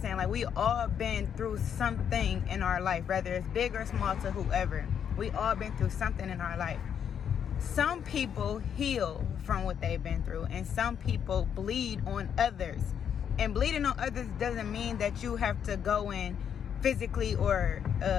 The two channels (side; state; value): right; quieter; 8.3 dB